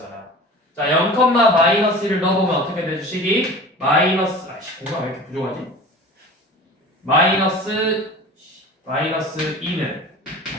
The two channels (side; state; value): both; normal; correlation 0.39